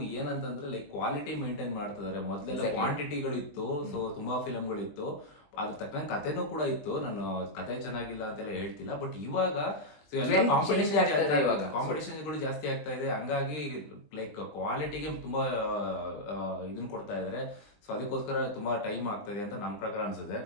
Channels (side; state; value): right; late; 20 ms